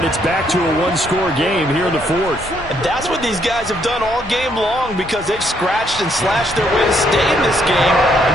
it's back to a 1-score game here in the 4th. And that's what these guys have done all game long because they've scratched and slashed their way to stay in this game. And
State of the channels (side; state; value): both; normal; correlation 0.71